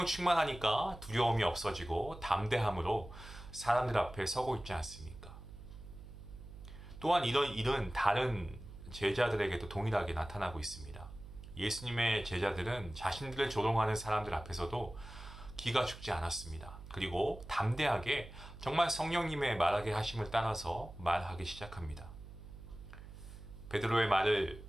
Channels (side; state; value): right; noise; hum, 15 dB below the sound